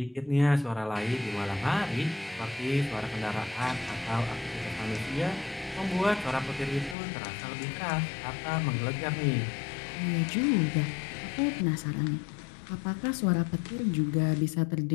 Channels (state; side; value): drops out; right; at 7.0 s